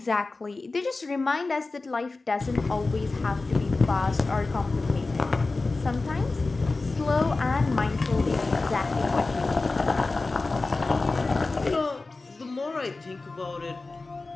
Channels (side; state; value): right; quieter; 3.5 dB